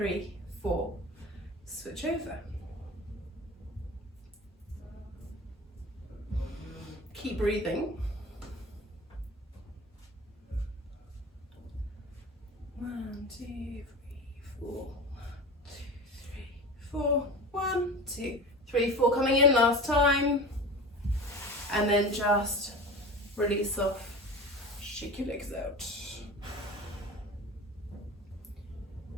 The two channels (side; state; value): both; normal; correlation 0.33